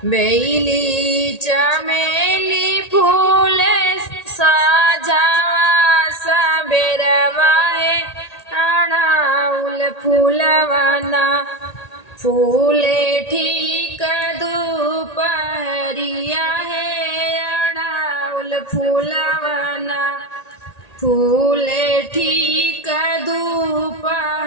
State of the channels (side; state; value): right; late; 1.8 ms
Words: बेली चमेली फूल साजवा सबेरवा अड़ाउल फूलवाना फूले ठीक दोपहरिया अड़ाउल फूलवाना फूले ठीक